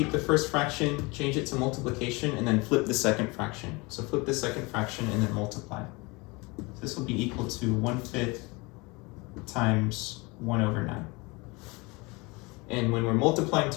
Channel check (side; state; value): right; quieter; 26.1 dB